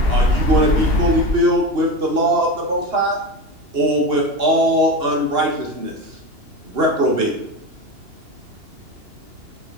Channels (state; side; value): late; left; 2.9 ms